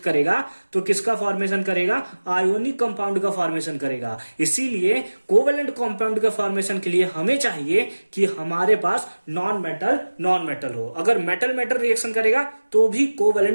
तो किसका फॉर्मेशन करेगा? आयोनिक कंपाउंड का फॉर्मेशन करेगा। इसीलिए कोवेलेंट कंपाउंड के फॉर्मेशन के लिए हमें चाहिए कि हमारे पास नॉन मेटल हो। अगर मेटल रिएक्शन करेगा तो भी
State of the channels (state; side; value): inverted; both; correlation -1.00